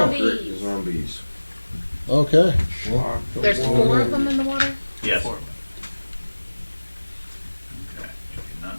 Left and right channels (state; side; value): inverted; both; correlation -1.00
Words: Zombies. Okay. Well, There's 4 of them in the water. Yes. Four. Okay. You do not